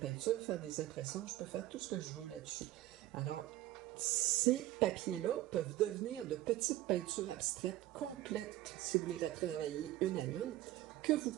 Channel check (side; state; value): left; quieter; 15.2 dB